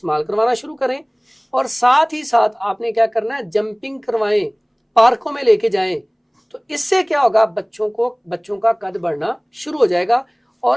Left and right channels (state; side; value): identical; both; correlation 1.00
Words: करवाना शुरू करें, और साथ ही साथ आपने क्या करना है, जंपिंग करवाएं, पार्कों में लेके जाएं, तो इससे क्या होगा, बच्चों का कद बढ़ना शुरू हो जाएगा